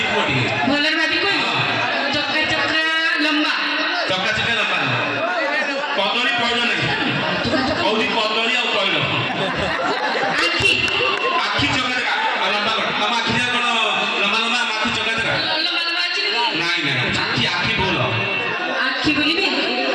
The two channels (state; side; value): identical; both; correlation 1.00